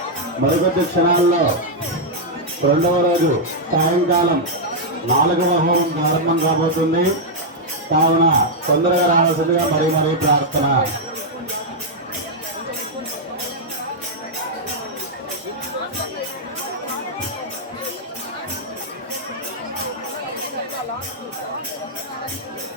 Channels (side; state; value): both; normal; correlation -0.03